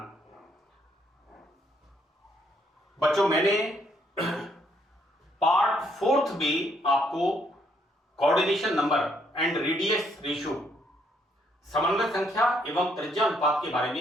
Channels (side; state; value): both; normal; correlation 0.70